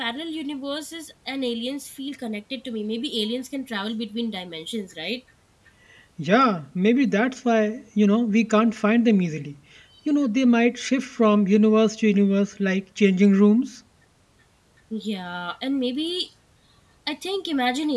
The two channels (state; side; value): identical; both; correlation 1.00